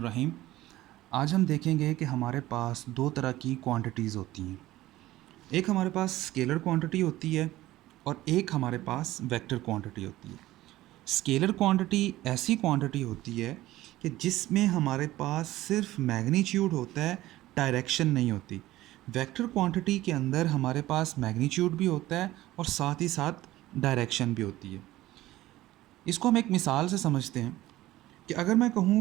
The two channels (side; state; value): left; quieter; 16.2 dB